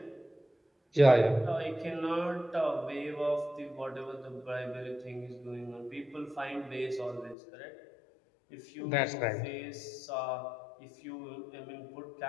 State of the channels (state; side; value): drops out; right; at 7.4 s